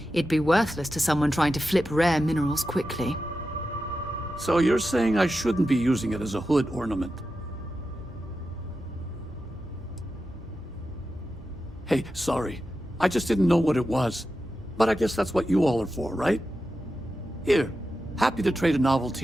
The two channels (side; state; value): both; normal; correlation 0.91